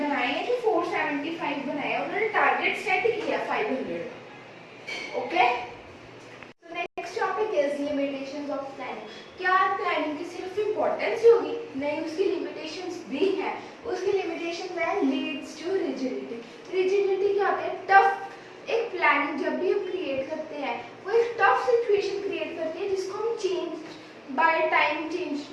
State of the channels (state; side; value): identical; both; correlation 1.00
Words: हैं कि 475 बनाए हैं, उन्होंने टारगेट सेट किया 500। ओके, तो next topic is limitations of planning. क्या प्लानिंग की सिर्फ इंपॉर्टेंस होगी? नहीं, उसकी लिमिटेशंस भी हैं। उसकी लिमिटेशन है लीड्स टू रिजिडिटी। रिजिडिटी क्या होता है? टफ। एक प्लानिंग जब भी हम क्रिएट करते हैं वो एक टफ सिचुएशन क्रिएट करती है जिसको हम चेंज बाय टाइम